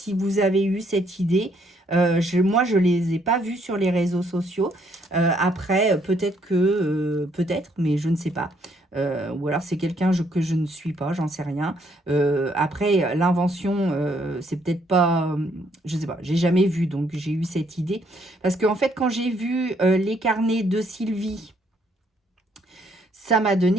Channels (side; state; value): both; normal; correlation 0.69